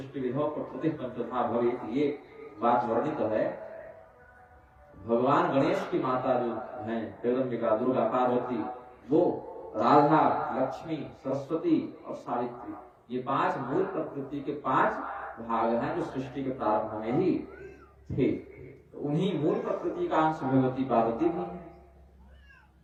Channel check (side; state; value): both; identical; correlation 1.00